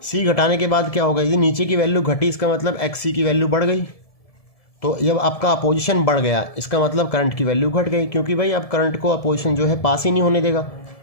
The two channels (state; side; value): late; right; 1.7 ms